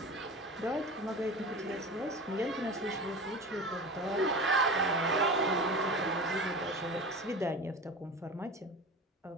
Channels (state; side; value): normal; both; correlation 0.32